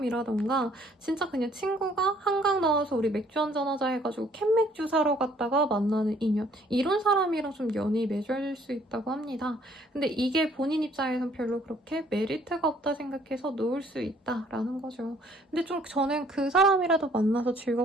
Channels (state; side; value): normal; both; correlation 0.61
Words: 진짜 그냥 친구가 한강 나와서 우리 맥주 한잔 하자 해가지고 캔맥주 사러 갔다가 만나는 인연. 이런 사람이랑 좀 연이 맺어질 수 있다고 합니다. 근데 이게 본인 입장에선 별로 그렇게 메리트가 없다 생각해서 놓을 수 있다라는 거죠. 근데 좀 저는 그 사람이라도 만나서